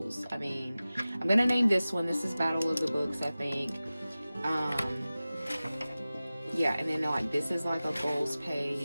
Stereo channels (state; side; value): inverted; both; correlation -0.97